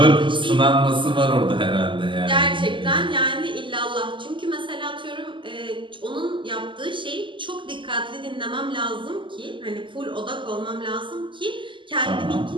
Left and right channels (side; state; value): left; late; 0.24 ms